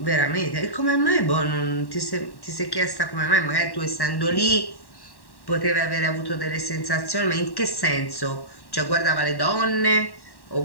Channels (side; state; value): right; late; 1.1 ms